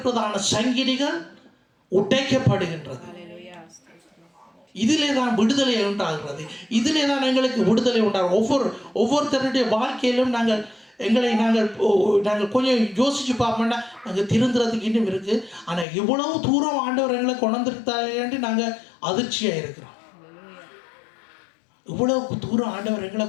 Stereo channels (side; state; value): right; drops out; at 15.9 s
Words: சங்கிலிகள் உடைக்கப்படுகின்றது. இதிலே தான் விடுதலை உண்டாகிறது. இதிலே தான் எங்களுக்கு விடுதலை உண்டாகும். ஒவ்வொருத்தருடைய வாழ்க்கையிலும் நாங்கள் கொஞ்சம் யோசிச்சு பார்ப்போம்னா நாங்கள் திருந்துறதுக்கு இன்னும் இருக்குது. ஆனால் இவ்வளவு தூரம் ஆண்டவர் எங்களை கொண்டிருத்தாரு நாங்கள் அதிர்ச்சியாக இருக்கிறோம். இவ்வளவு தூரம் ஆண்டவர் எங்களை